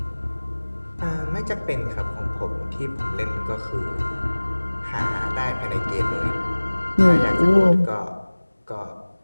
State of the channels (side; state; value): both; inverted; correlation -1.00